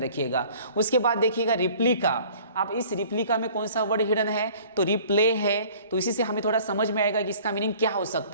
उसके बाद देखिएगा रिप्लिका। अब इस रिप्लिका में कौन सा वर्ड हिडन है? तो रिप्ले है। तो इसी से हमें थोड़ा समझ में आएगा कि इसका मीनिंग क्या हो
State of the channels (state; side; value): inverted; both; correlation -0.51